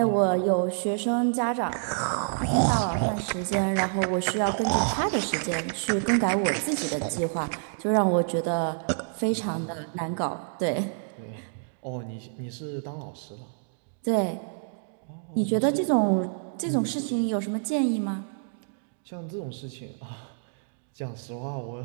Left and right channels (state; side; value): silent; left; digital silence